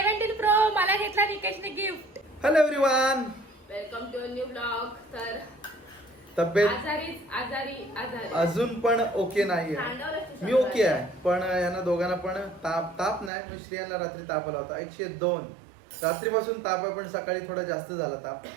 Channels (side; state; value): left; drops out; at 13.3 s